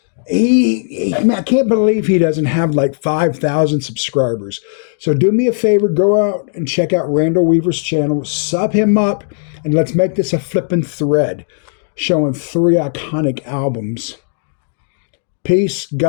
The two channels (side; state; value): right; silent; digital silence